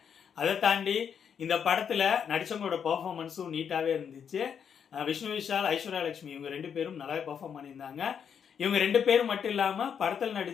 அதை தாண்டி இந்த படத்தில் நடித்தவங்களோட பர்ஃபார்மன்ஸும் நீட்டாகவே இருந்துச்சு. விஷ்ணு விஷால், ஐஸ்வர்யலட்சுமி இவங்க 2 பேரும் நல்லாவே பர்ஃபார்ம் பண்ணியிருந்தாங்க. இவங்க 2 பேரும் மட்டும் இல்லாமல் படத்தில்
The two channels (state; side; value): quieter; right; 7.6 dB